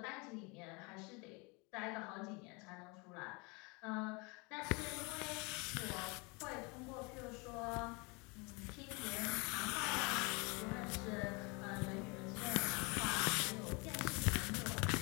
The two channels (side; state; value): right; quieter; 28.9 dB